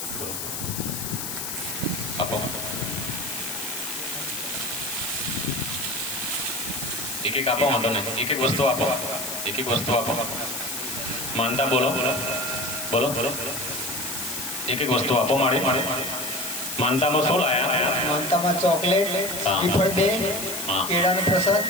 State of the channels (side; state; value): left; noise; hiss, 5 dB below the sound